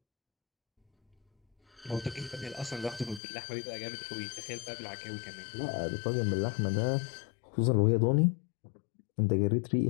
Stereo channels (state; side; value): drops out; right; at 3.2 s